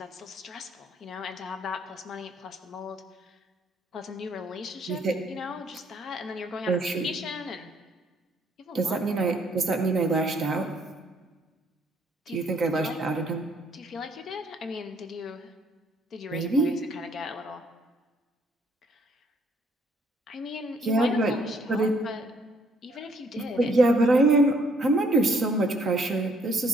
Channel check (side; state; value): both; normal; correlation 0.66